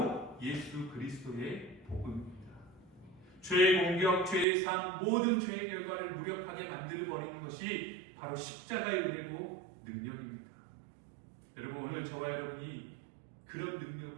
예수 그리스도의 복음입니다. 죄의 공격, 죄의 삶, 모든 죄의 결과를 무력하게 만들어버리는 것이 바로 십자가의 은혜고 능력입니다. 여러분, 오늘 저와 여러분이 그런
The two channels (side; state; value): left; drops out; at 4.5 s